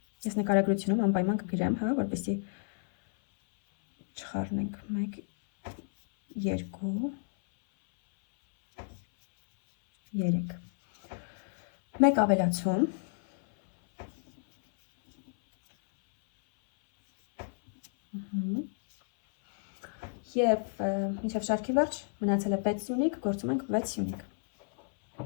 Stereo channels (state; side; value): silent; right; 57 dB below the other